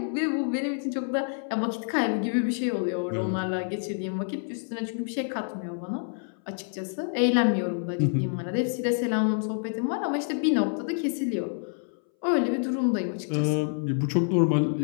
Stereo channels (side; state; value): right; silent; 60 dB below the other